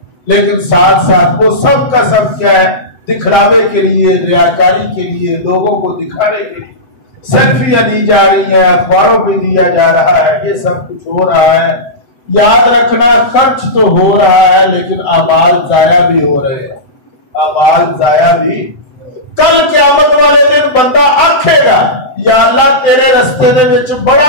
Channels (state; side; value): late; right; 7.9 ms